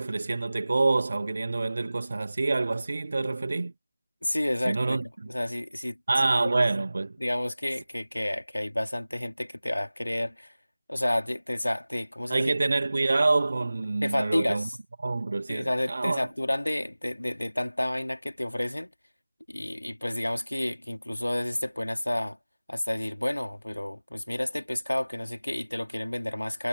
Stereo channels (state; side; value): inverted; both; correlation -0.98